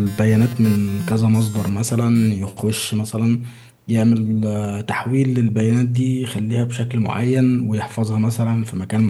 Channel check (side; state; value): both; identical; correlation 1.00